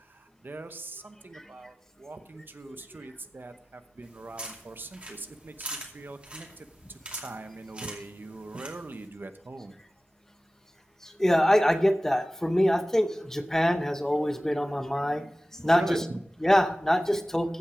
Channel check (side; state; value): both; normal; correlation 0.97